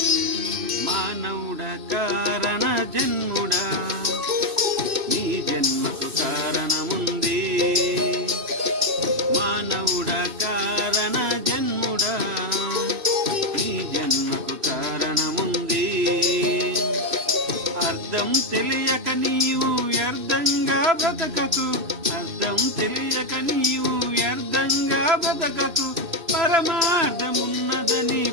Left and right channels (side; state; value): left; late; 2.6 ms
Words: మానవుడా కారణ జన్ముడా నీ జన్మకు కారణముంది. మానవుడా కారణ జన్ముడా నీ జన్మకు కారణముంది. అర్థం తెలియక నీవు వ్యర్థంగా బ్రతకకు, అర్థం తెలియక నీవు వ్యర్థంగా బ్రతకకు. పరమార్థమున్నదని